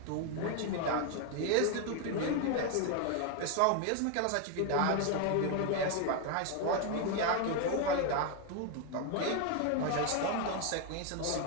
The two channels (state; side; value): different; both; correlation 0.01